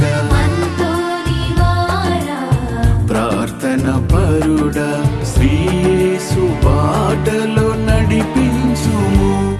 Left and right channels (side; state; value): both; identical; correlation 1.00